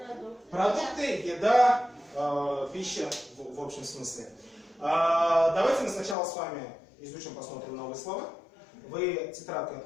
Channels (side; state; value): right; drops out; at 6.2 s